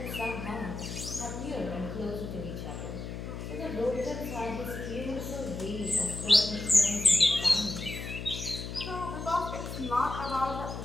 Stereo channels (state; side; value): noise; left; hum, 7 dB below the sound